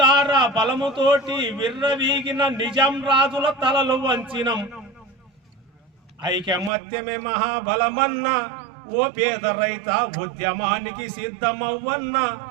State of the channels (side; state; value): left; drops out; at 6.7 s